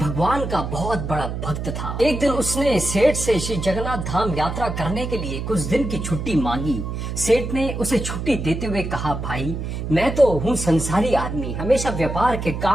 का बहुत बड़ा भक्त था। एक दिन उसने सेठ से श्री जगन्नाथ धाम यात्रा करने के लिए कुछ दिन की छुट्टी मांगी। सेठ ने उसे छुट्टी देते हुए कहा, भाई मैं तो हूँ संसारी आदमी, हमेशा व्यापार के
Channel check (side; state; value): right; noise; hum, 5 dB below the sound